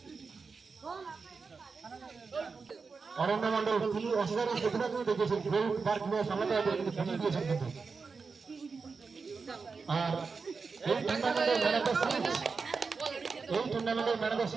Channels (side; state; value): left; quieter; 4.8 dB